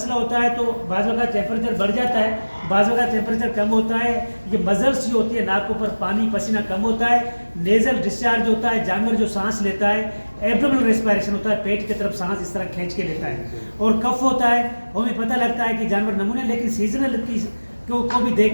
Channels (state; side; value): inverted; both; correlation -1.00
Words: होता है तो बाज़ वक़्त टेम्परेचर बढ़ जाता है, बाज़ वक़्त टेम्परेचर कम होता है। ये मजल्स जो होती है, नाक के ऊपर पानी पसीना कम होता है, नेज़ल डिस्चार्ज होता है, जानवर जो सांस लेता है, एब्डोमिनल रेस्पिरेशन होता है, पेट की तरफ सांस इस तरह खींच के लेता है, और कफ होता है। हमें पता लगता है कि जानवर नमूने, लेकिन सीजनल को भी देख